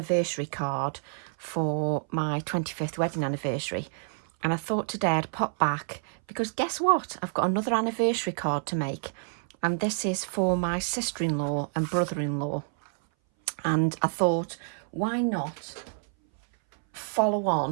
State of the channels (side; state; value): left; silent; 58 dB below the other